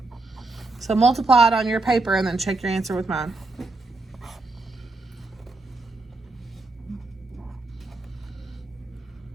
So multiply it on your paper and then check your answer with mine.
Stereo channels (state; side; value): quieter; left; 3.2 dB